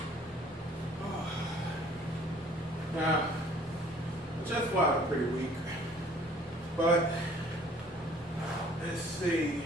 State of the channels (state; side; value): normal; both; correlation 0.55